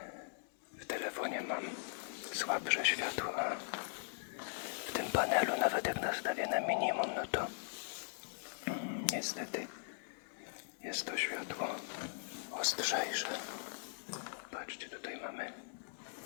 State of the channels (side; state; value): right; silent; digital silence